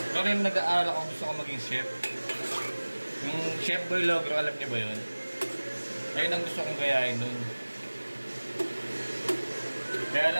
Ito rin nag-aaral ako, gusto ko maging chef. Yung Chef Boy Logro, alam niyo ba yun? Ayun ang gusto kong gayahin nun. Kaya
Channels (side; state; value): both; inverted; correlation -1.00